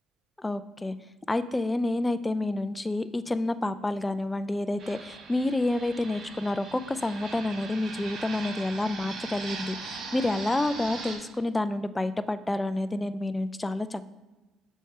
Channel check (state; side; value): normal; both; correlation 0.94